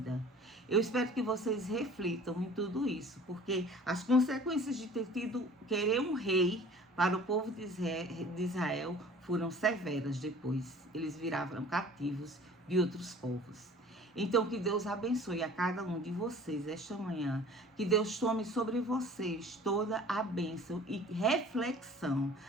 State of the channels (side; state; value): both; normal; correlation 0.47